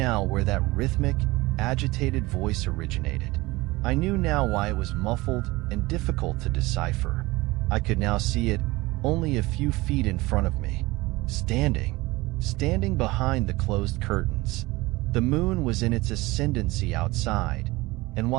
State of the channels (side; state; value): left; quieter; 21.0 dB